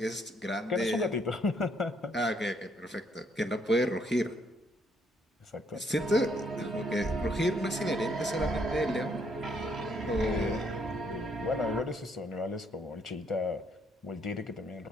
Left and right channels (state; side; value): normal; both; correlation 0.70